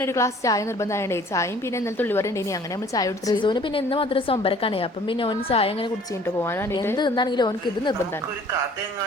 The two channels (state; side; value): normal; both; correlation 0.53